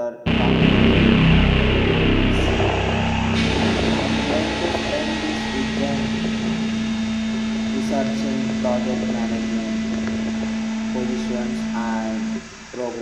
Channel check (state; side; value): identical; both; correlation 1.00